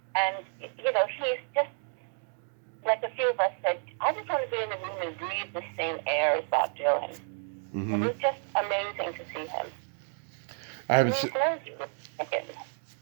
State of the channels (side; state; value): left; silent; 56 dB below the other